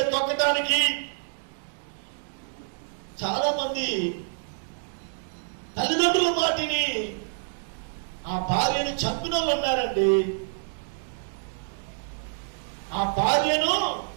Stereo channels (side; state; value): left; silent; digital silence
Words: తొక్కటానికి చాలా మంది తల్లిదండ్రుల మాటిని ఆ భార్యను చంపిన వాళ్ళు ఉన్నారండి. ఆ భార్యను